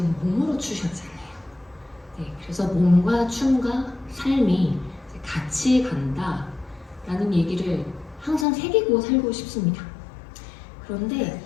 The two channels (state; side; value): drops out; right; at 8.5 s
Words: 몸으로 추셨잖아요. 네, 그래서 몸과 춤과 삶이 같이 간다라는 얘기를 항상 새기고 살고 싶습니다. 그런데